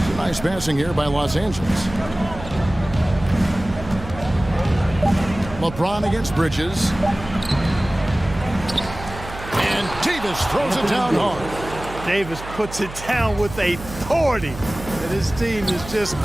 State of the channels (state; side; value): noise; right; hum, 13 dB below the sound